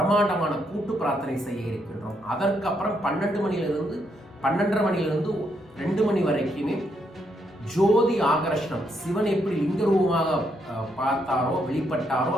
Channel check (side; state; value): both; normal; correlation 0.76